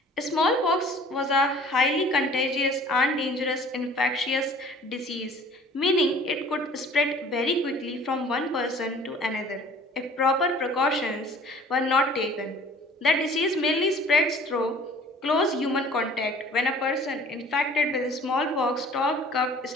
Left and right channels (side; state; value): both; normal; correlation 0.50